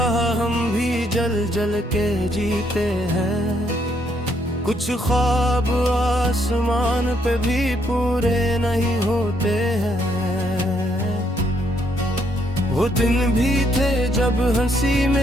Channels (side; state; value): both; normal; correlation 0.72